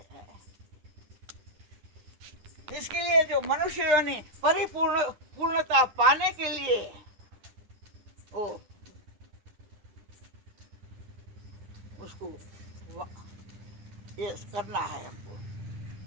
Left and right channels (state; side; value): late; left; 10 ms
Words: हैं। इसके लिए जो मनुष्य योनि पूर्णता पाने के लिए वो उसको ये करना है हमको,